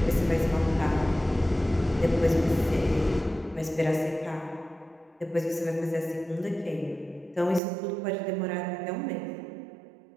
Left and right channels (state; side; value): drops out; left; at 7.6 s